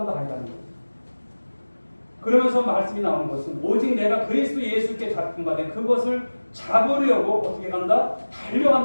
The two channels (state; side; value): inverted; both; correlation -1.00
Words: 아니라는 거예요. 그러면서 말씀이 나오는 것은 오직 내가 그리스도 예수께 잡힌 바 된 그것을 잡으려고 어떻게 간다?